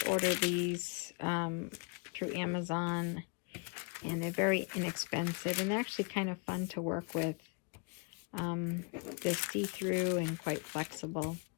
order these through Amazon, and they're very inexpensive and actually kind of fun to work with. They're see-through and quite flexible.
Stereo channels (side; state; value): right; quieter; 34.2 dB